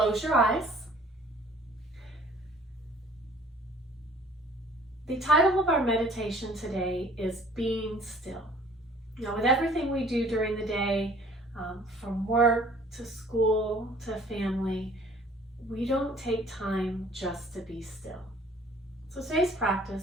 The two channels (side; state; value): both; normal; correlation 0.53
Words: your eyes. The title of our meditation today is Being Still. Now, with everything we do during the day, from work to school to family, we don't take time just to be still. So today's